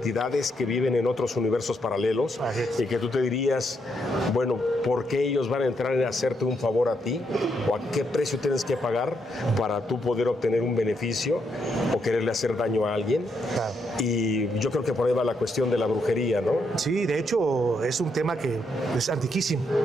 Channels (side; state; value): both; normal; correlation 0.78